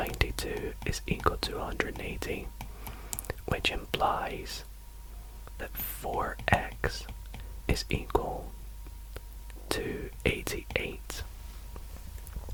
is equal to 180, which implies that 4x is equal to 88,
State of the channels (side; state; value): both; identical; correlation 1.00